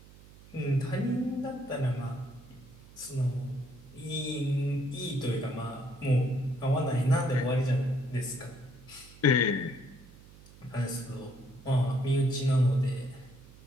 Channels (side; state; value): right; noise; hum, 21 dB below the sound